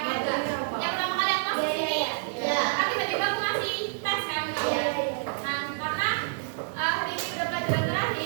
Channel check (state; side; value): silent; left; digital silence